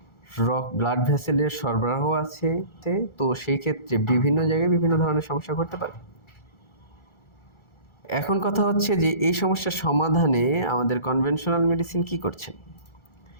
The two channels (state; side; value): late; right; 1.4 ms